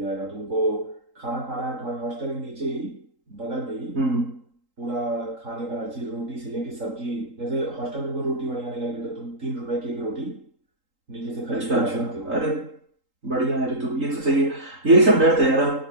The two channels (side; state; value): left; late; 3.8 ms